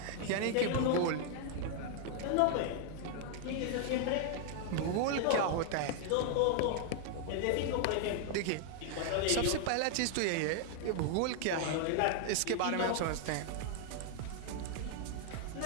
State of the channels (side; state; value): both; different; correlation 0.00